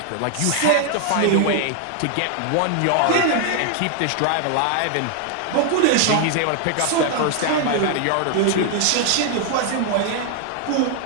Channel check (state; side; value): different; both; correlation 0.00